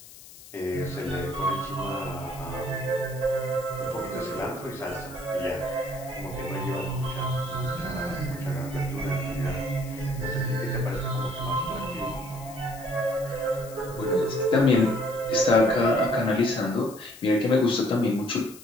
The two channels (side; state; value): left; noise; hiss, 18 dB below the sound